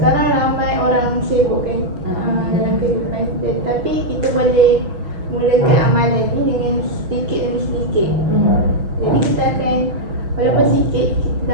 ramai orang sibuk kan dalam kehidupan. Tapi kita boleh mulakan amalan ni dengan sedikit demi sedikit. Jadi kita akan, walaupun sikit, kita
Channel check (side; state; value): left; late; 6.2 ms